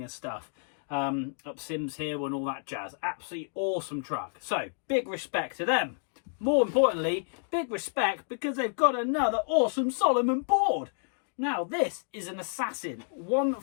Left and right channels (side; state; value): right; silent; digital silence